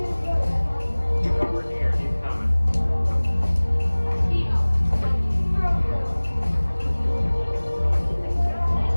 He's over here. He's coming.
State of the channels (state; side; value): inverted; both; correlation -1.00